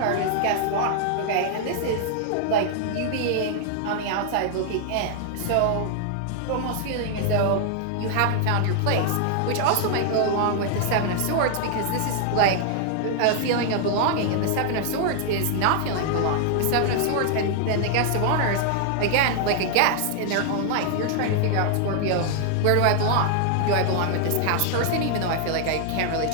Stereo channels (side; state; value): both; different; correlation 0.00